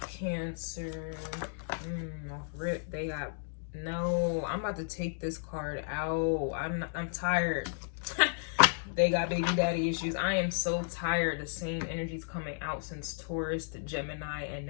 Cancer? Off rip, they got no. I'm about to take this card out. I'm tired. They got baby daddy issues. I am so tired. The same energy's coming out since Taurus to Gemini, and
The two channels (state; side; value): silent; right; digital silence